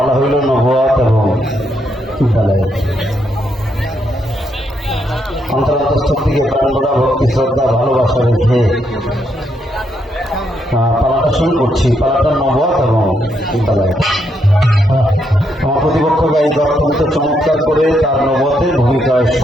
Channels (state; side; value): normal; both; correlation 0.77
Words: হইল নবুয়াত এবং বেলায়েত। অন্তরস্থ থেকে প্রাণভরা ভক্তি শ্রদ্ধা ভালোবাসা রেখে পালাটা শুরু করছি। পালাটা নবুয়ত এবং বেলায়েত। আমার প্রতিপক্ষ গায়িক অত্যন্ত চমৎকার করে তার নবুয়তের ভূমিকায়